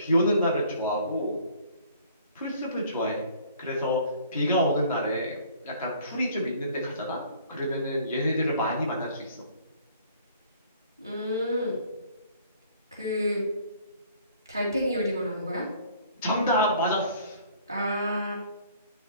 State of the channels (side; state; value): both; inverted; correlation -0.55